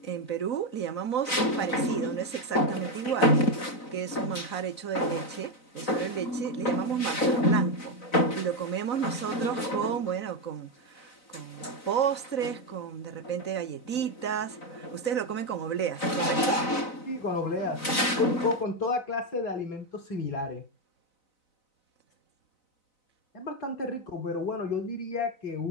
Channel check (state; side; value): late; right; 4.0 ms